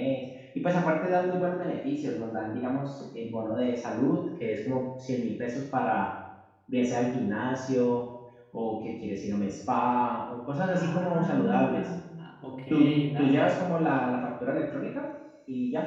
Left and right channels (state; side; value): identical; both; correlation 1.00